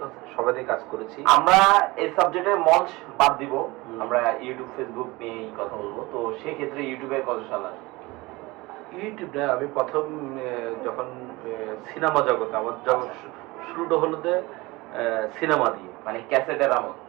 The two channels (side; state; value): left; quieter; 22.1 dB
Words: সবাই কাজ করেছি। আমরা এই সাবজেক্টে মঞ্চ বাদ দিব, আমরা ইউটিউব ফেসবুক নিয়েই কথা বলবো। তো সেই ক্ষেত্রে ইউটিউবে কত সাল আসে? ইউটিউবে আমি প্রথম যখন সিনেমা জগতে আমার শুরুটা হলো সিনেমা দিয়ে, মানে ক্যাসেটের আমল?